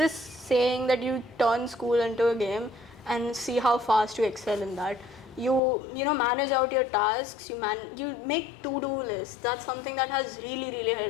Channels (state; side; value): drops out; right; at 5.6 s